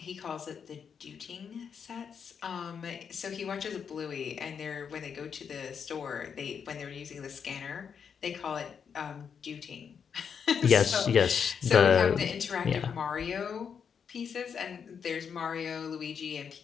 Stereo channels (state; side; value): quieter; right; 6.9 dB